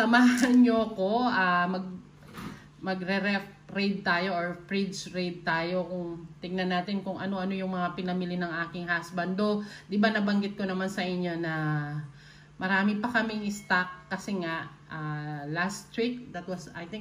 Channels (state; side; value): identical; both; correlation 1.00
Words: nyo ko magre-ref raid tayo or fridge raid tayo, kung tingnan natin kung ano-ano yung mga pinamili ng aking husband. Do, di ba nabanggit ko naman sa inyo na marami pa kaming stock kasi nga last week, that was I